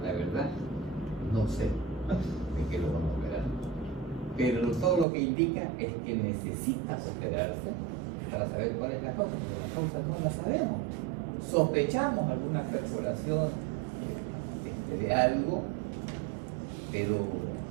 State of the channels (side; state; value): left; drops out; at 5.1 s